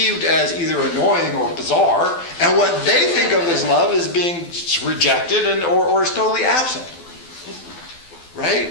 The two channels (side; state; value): right; late; 12 ms